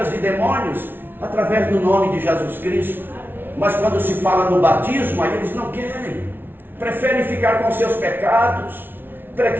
de demônios através do nome de Jesus Cristo. Mas quando se fala no batismo, aí eles não querem. Preferem ficar com seus pecados.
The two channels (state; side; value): late; left; 0.10 ms